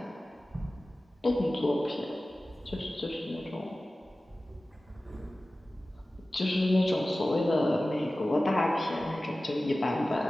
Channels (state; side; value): normal; both; correlation 0.96